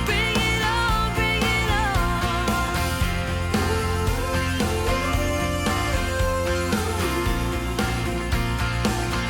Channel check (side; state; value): both; identical; correlation 1.00